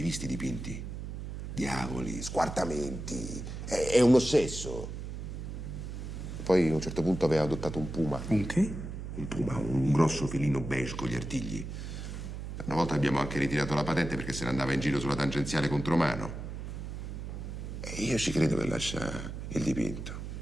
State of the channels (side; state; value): right; noise; hum, 7 dB below the sound